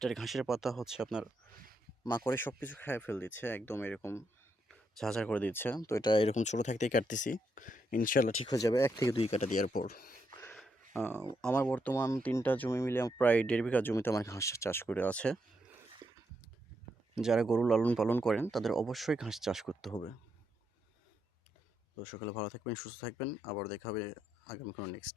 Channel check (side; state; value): both; normal; correlation 0.80